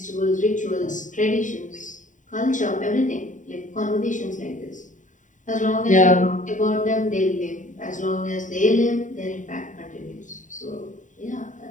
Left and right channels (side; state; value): right; late; 0.37 ms